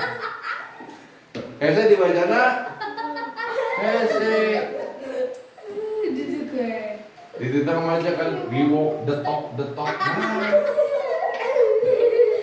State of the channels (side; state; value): both; identical; correlation 1.00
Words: Hese dibacana, hese. Di tengah aja kan, we walk, the talk.